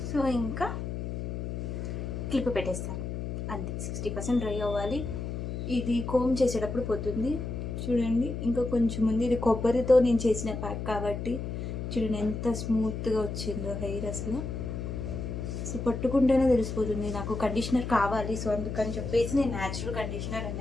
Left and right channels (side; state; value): left; noise; hum, 5 dB below the sound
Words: సో ఇంకా క్లిప్ పెట్టేస్తాను అంతే. 60% డ్రై అవ్వాలి. ఇది కోమ్ చేసేటప్పుడు పోతుంది చూడండి. ఇంకా కొంచెం ఉంది, ఇది కొబ్బరితో నేను చేసిన ప్యాక్ కాబట్టి చూడండి ఎంత స్మూత్గా వచ్చిందో హెయిర్. అసలు సో పట్టుకుంటేనే తెలిసిపోతుంది నాకు కండిషనర్ కావాలి. సో అందుకని చెప్పేసి నేను న్యాచురల్ కండిషనర్